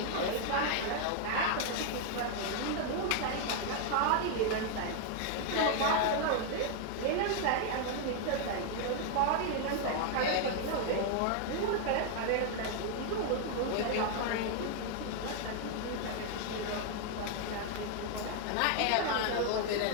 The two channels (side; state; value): both; different; correlation 0.00